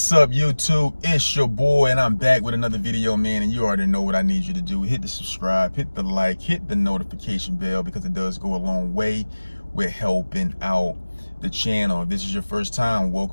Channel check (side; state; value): both; inverted; correlation -1.00